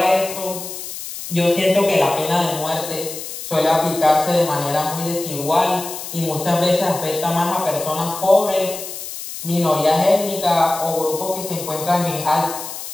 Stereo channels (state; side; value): noise; left; hiss, 9 dB below the sound